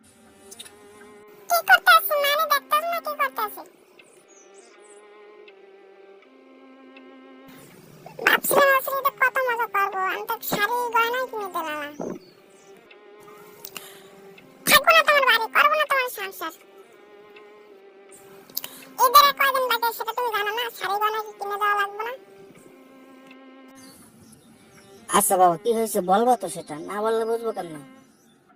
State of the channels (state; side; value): identical; both; correlation 1.00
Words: কি করতেছি মানে দেখতেছ না কি করতেছি? ভাবছিলাম আসলে কত মজা করবো, আমি তো শাড়ি গয়নাই কিনে দিলাম না। থাকবো না তোমার বাড়ি, করবো না তোমার সংসার। ঈদের আর কয়দিন বাকি সেটা তুমি জানো না? শাড়ি গয়না কি কিনে দেওয়া লাগবে না? আচ্ছা বাবা, কি হয়েছে বলবো তো, সেটা না বললে বুঝবো কেমন?